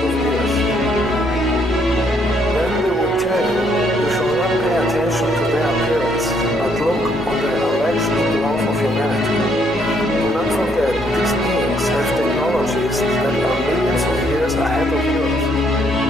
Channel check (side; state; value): both; normal; correlation 0.70